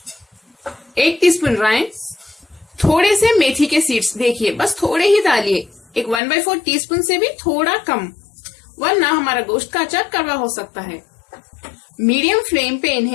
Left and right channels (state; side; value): drops out; right; at 6.2 s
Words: 1 टीस्पून राई, थोड़े से मेथी के सीड्स। देखिए बस थोड़े ही डालिए, एक 1/4 टीस्पून से भी थोड़ा कम, वरना हमारा गोश्त का अचार कड़वा हो सकता है। मीडियम फ्लेम पे